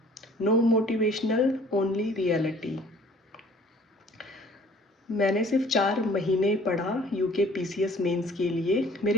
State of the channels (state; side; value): normal; both; correlation 0.53